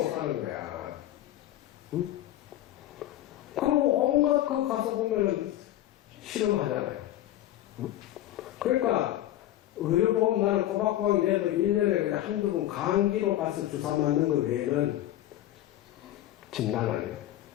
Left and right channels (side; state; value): right; quieter; 13.6 dB